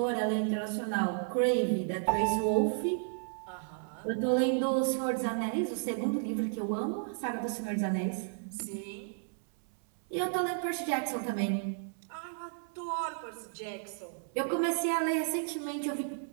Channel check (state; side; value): silent; left; 55 dB below the other